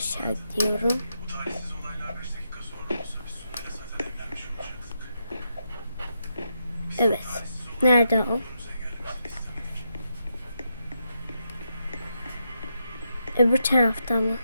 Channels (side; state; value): both; inverted; correlation -0.83